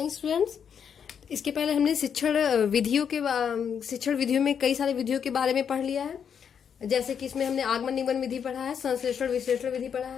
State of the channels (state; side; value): quieter; right; 7.6 dB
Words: students. इसके पहले हमने शिक्षण विधियों में कई सारे विधियों के बारे में पढ़ लिया है। जैसे कि इसमें हमने आगमन निगमन विधि पढ़ा है, संश्लेषण विश्लेषण विधि पढ़ा